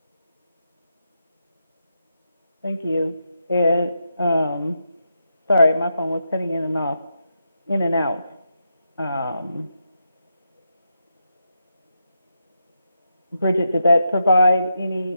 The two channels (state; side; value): inverted; both; correlation -0.84